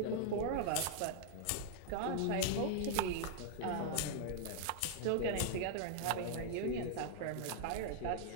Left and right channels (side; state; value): both; different; correlation -0.01